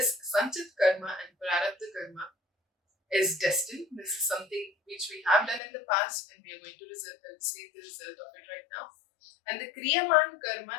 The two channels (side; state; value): right; drops out; at 5.6 s